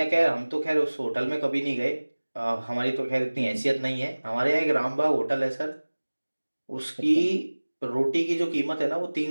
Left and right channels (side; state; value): both; inverted; correlation -1.00